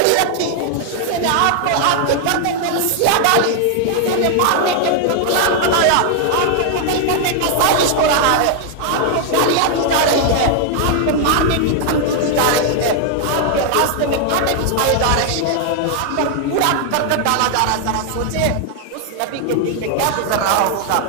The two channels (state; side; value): different; both; correlation 0.00